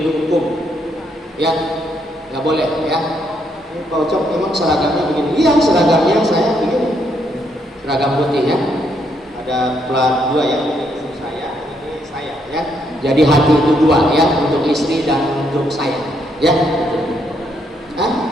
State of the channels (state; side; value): normal; both; correlation 0.74